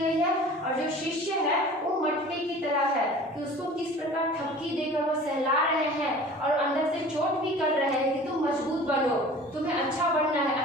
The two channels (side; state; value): both; normal; correlation 0.43